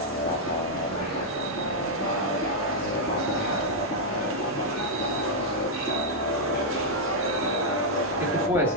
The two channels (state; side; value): normal; both; correlation -0.04